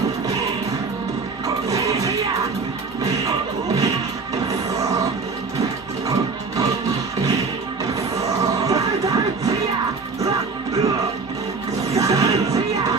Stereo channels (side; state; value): left; quieter; 4.4 dB